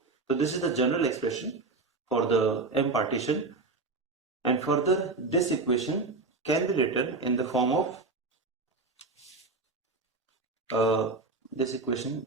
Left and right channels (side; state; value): left; quieter; 3.6 dB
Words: So this is the general expression for the M partition, and further this equation can be written in the form of this equation